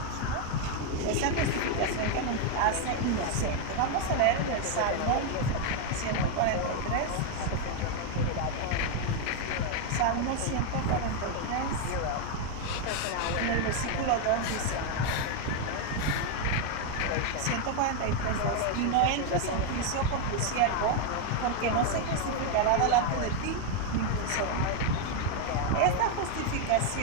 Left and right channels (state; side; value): different; both; correlation 0.01